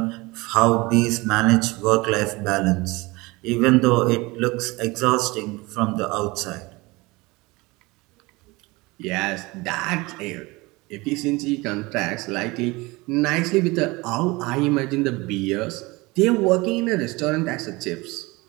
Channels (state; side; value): quieter; left; 23.2 dB